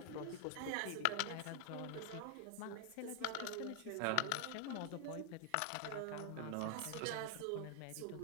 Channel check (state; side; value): different; both; correlation 0.00